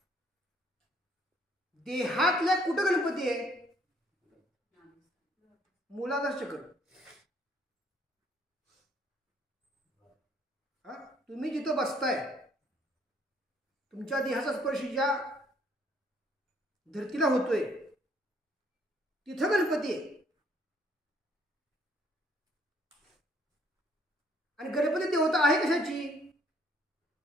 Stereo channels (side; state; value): both; normal; correlation 0.64